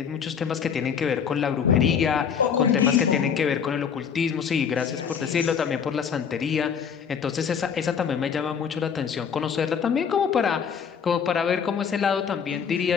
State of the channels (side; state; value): right; quieter; 7.2 dB